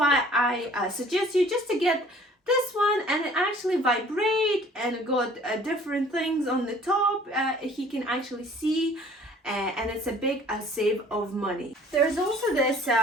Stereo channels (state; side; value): normal; both; correlation 0.52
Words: I suggest you just to get this one, and it actually vibrate and got different things on the top. He can actually see, and it's a big save of money. There's also this